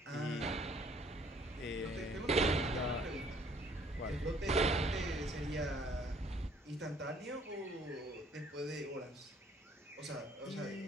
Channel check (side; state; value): both; normal; correlation 0.60